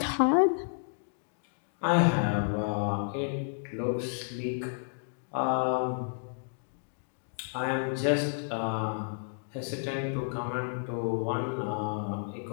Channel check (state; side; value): silent; right; digital silence